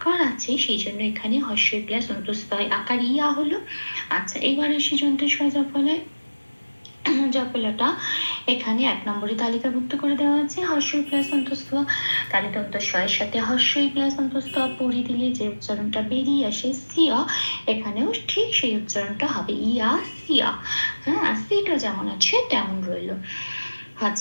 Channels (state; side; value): inverted; both; correlation -1.00